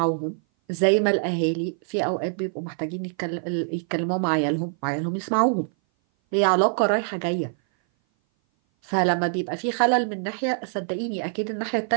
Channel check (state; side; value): silent; left; 58 dB below the other